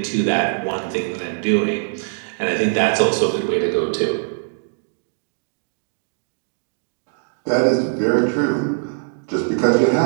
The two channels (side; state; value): left; silent; digital silence